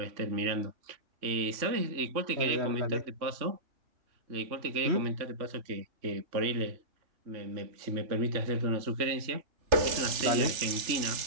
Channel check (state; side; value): late; left; 3.5 ms